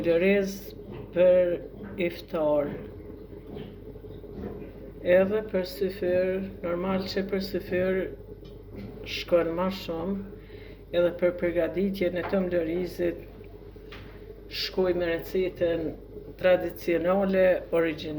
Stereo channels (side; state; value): both; identical; correlation 1.00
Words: për iftar. Edhe për syfyr, normal që për syfyr shkon ma shumë, edhe për përgatitjen e tëmbëlërizit shkoj me recetën tradicionale